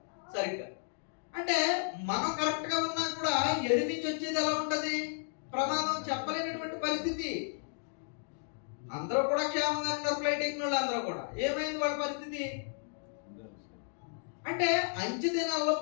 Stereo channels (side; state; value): right; silent; digital silence